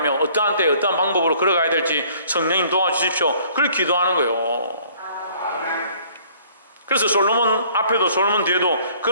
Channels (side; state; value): both; inverted; correlation -0.57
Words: 어떠한 때에 어떠한 방법으로 걸어가야 될지 성령님 도와주십시오. 그걸 기도하는 거예요. 그래서 솔로몬 앞에도 솔로몬 뒤에도